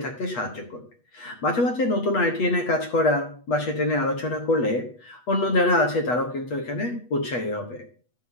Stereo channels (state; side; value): late; right; 8.2 ms